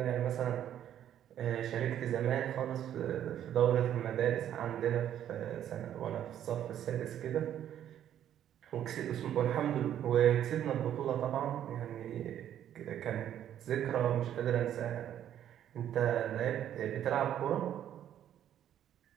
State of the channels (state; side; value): quieter; left; 10.7 dB